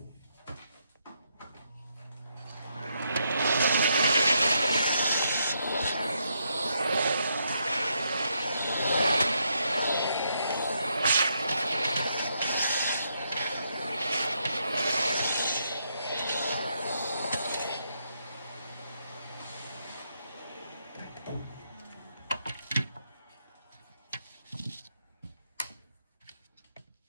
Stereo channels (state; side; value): inverted; both; correlation -0.78